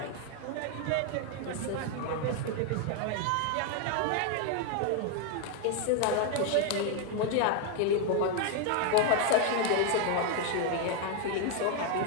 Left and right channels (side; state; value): both; different; correlation 0.01